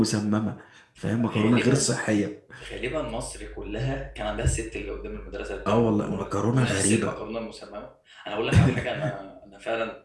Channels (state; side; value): identical; both; correlation 1.00